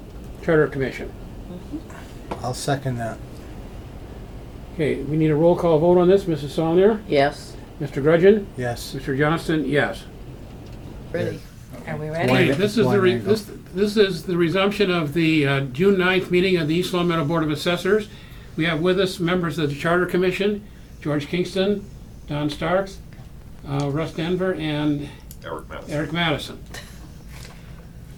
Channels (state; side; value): identical; both; correlation 1.00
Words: Charter Commission. I'll second that. Okay, we need a roll call vote on this. Mrs. Saulnier? Yes. Mr. Grudgeon? Yes. Mr. Johnston? Yes. Ready. Are we One- ready? Okay, this is one angle. this is the resumption of the June 9th meeting of the East Long Meadow Board of Assessors. We have with us members of the Charter Commission, George Kingston, Don Starks, Russ Denver, and Eric Madison.